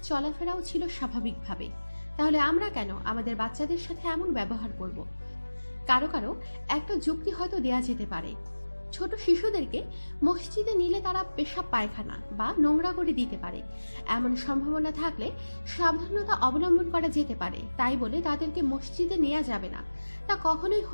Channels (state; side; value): inverted; both; correlation -1.00